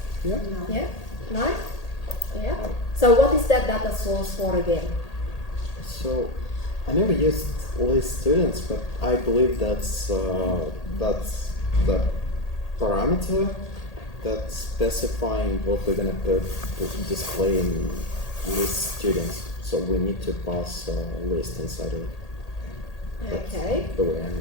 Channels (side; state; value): right; late; 1.8 ms